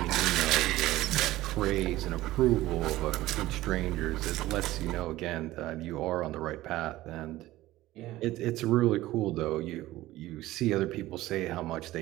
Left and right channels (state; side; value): quieter; left; 16.7 dB